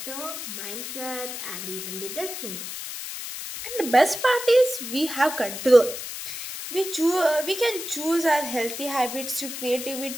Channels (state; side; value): noise; left; hiss, 7 dB below the sound